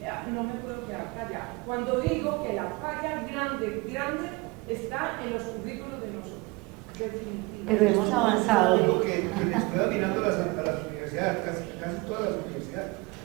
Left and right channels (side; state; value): left; quieter; 24.8 dB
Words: no me puedo quedar callada. Cuando digo que la falla grande está en los currículos de nosotros. Pero hemos avanzado. Lo que estoy mirando a las universidades, casi todas las universidades,